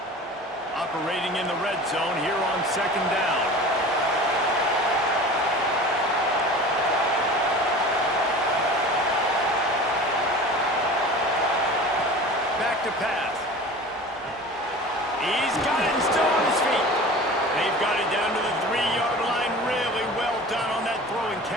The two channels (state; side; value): normal; both; correlation 0.38